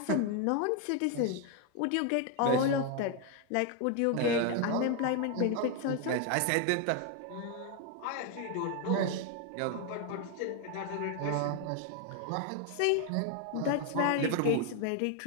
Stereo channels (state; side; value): different; both; correlation 0.01